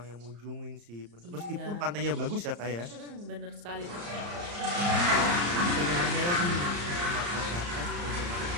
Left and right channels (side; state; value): left; late; 34 ms